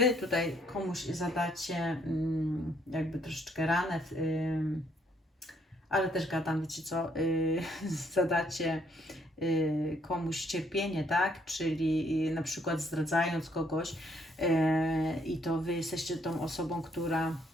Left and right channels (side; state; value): both; normal; correlation 0.68